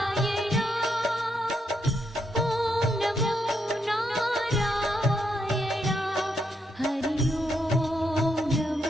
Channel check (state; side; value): normal; both; correlation 0.79